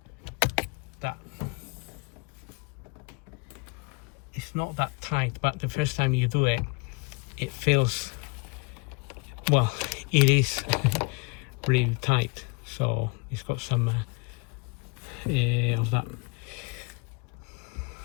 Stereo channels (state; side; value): quieter; right; 29.6 dB